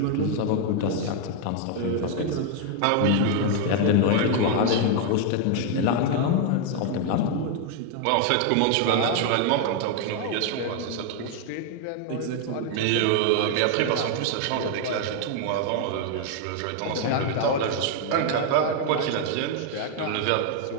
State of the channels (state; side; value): different; both; correlation 0.00